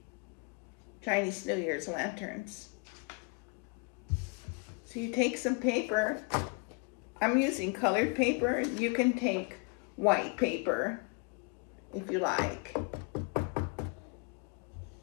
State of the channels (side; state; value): right; quieter; 31.7 dB